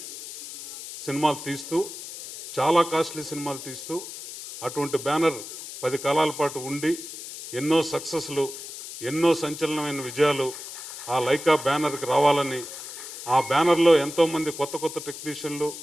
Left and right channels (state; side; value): noise; left; hiss, 11 dB below the sound